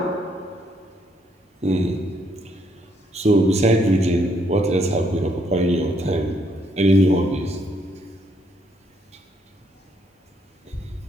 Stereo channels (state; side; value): normal; both; correlation 0.72